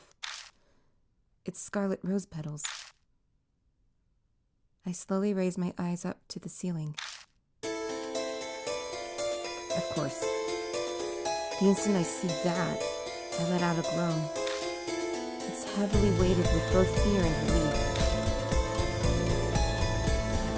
It's scarlet rose petals. I slowly raise my eyes up to the ceiling. Of course. The instant I see that, I let out a groan. It's heavily weighted with both fear and relief.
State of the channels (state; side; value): identical; both; correlation 1.00